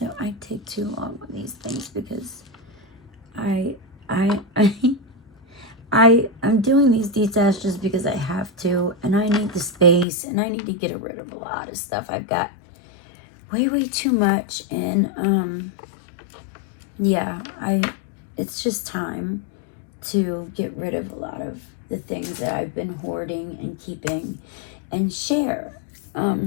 take too long with these things because I'm doing these detaches just because I have to, and I need the space, and I need to get rid of a lot of stuff. I've got way too much, and yeah, it's just time to get rid of a lot of the things that I've been hoarding and keeping and share.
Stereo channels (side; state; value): right; drops out; at 10.1 s